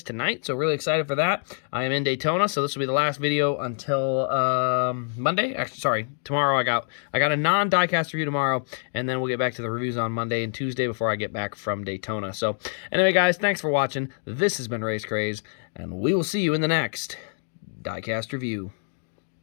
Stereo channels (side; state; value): right; silent; digital silence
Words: tonight, so really excited for that. I am in Daytona, so this will be the last video until Monday. Actually, sorry, tomorrow I got a non-Diecast review tomorrow, and then we'll get back to the reviews on Monday and Tuesday before I get back from Daytona. So anyway, guys, thanks for watching. This has been Race Craze, and we will see you in the next Diecast review.